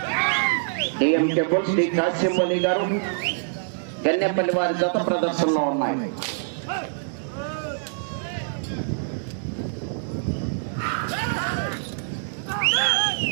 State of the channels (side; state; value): left; silent; digital silence